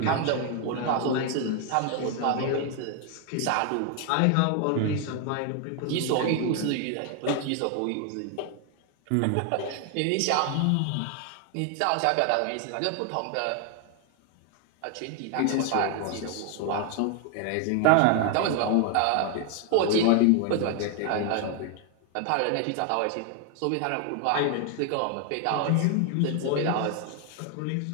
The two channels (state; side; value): different; both; correlation 0.01